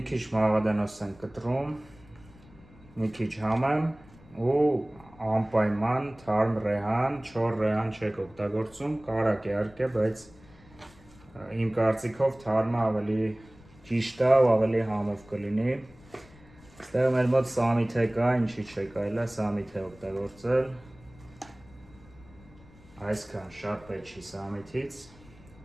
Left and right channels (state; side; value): noise; left; rumble, 24 dB below the sound